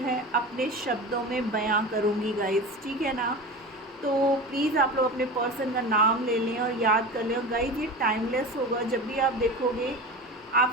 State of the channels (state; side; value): normal; both; correlation 0.30